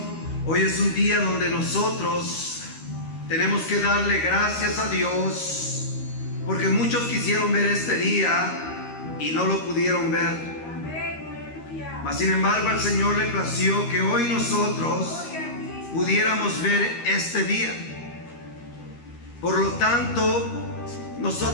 hoy es un día donde nosotros tenemos que darle gracias a Dios, porque muchos quisieron ver este día y no lo pudieron ver. Mas sin embargo al Señor le plació que hoy nosotros pudiéramos ver este día. Por lo tanto,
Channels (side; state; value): right; late; 13 ms